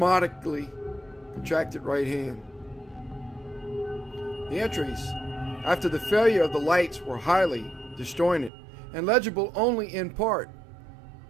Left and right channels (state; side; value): drops out; left; at 8.5 s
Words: contracted right hand. The entries after the failure of the lights were highly disjointed and legible only in part.